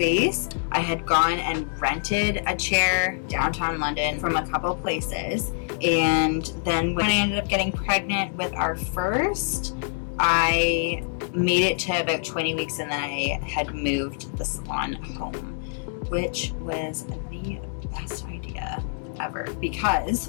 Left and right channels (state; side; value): silent; right; 61 dB below the other